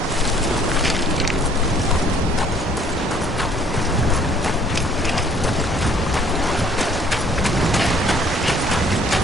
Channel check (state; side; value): normal; both; correlation 0.58